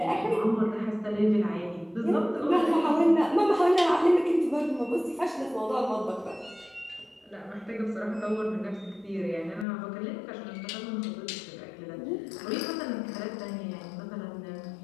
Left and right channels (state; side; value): drops out; right; at 9.7 s